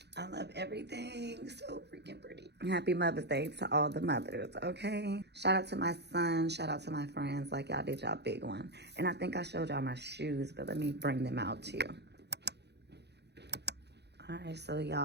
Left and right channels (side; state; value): left; late; 0.49 ms